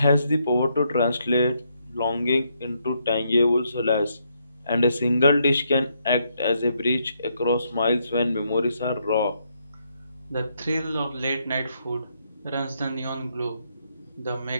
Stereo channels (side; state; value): both; inverted; correlation -0.76